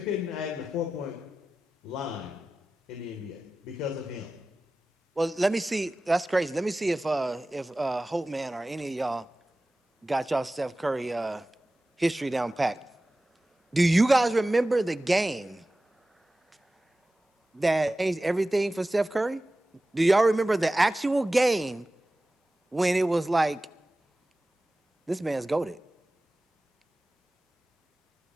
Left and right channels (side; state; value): both; normal; correlation 0.96